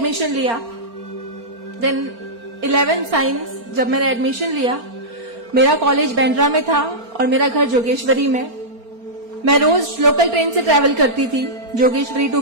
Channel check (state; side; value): late; left; 4.3 ms